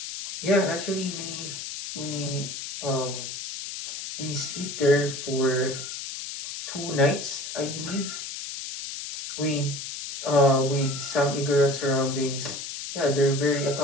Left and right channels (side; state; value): left; noise; hiss, 7 dB below the sound